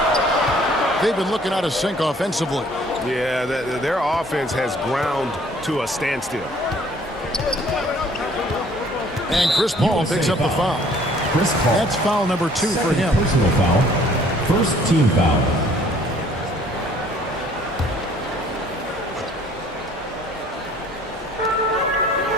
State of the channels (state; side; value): normal; both; correlation 0.57